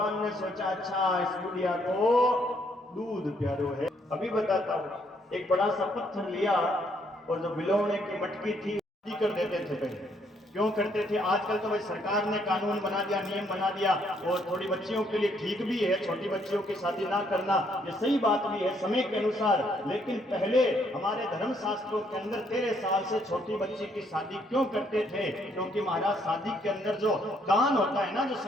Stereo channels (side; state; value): both; normal; correlation 0.70